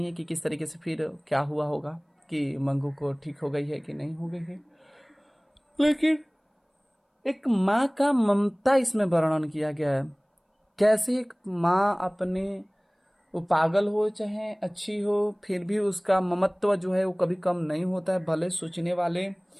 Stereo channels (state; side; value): identical; both; correlation 1.00